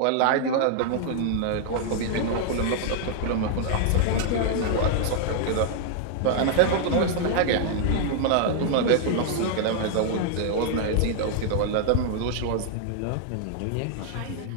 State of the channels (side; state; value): both; different; correlation 0.00